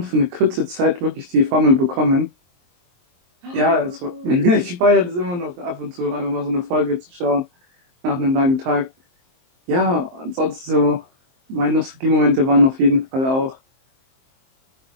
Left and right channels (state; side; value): late; left; 23 ms